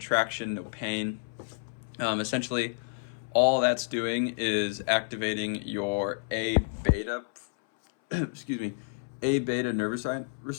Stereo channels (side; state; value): right; silent; 58 dB below the other